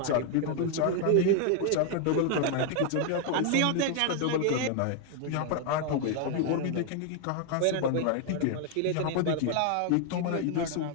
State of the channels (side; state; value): both; different; correlation 0.00